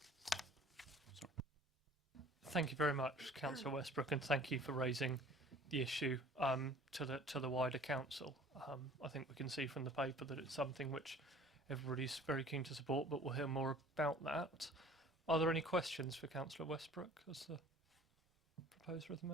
Thank you very much, Councillor Westbrook, and thank you for raising the issue to the wider council. I think we can see from the paper that it's something which everybody's very keen to support, but we'll hear more about that. Are there any questions for Councillor Westbrook as the proposer of the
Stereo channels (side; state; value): both; normal; correlation 0.49